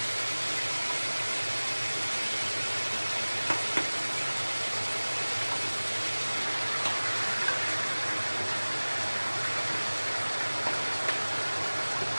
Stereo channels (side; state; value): both; inverted; correlation -1.00